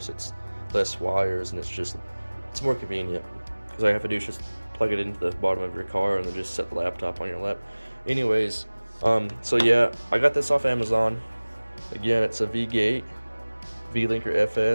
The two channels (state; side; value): inverted; both; correlation -1.00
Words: it's less wires and it's more convenient. Because all you have to do is just plug it into the bottom of your car and then just set the laptop on your lap. Anyways, so yeah, I got this off Amazon. Again, it's a V-Gate V-Linker